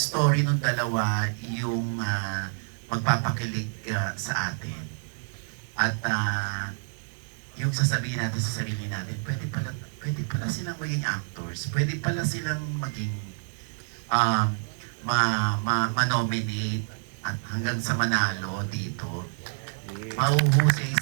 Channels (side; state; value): left; silent; digital silence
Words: ng dalawa yung magpapakilig sa atin at yung sasabihin natin sa sarili natin, pwede pwede pala silang maging actors, pwede pala silang maging ma-nominate at hanggang sa manalo dito. Mahuhusay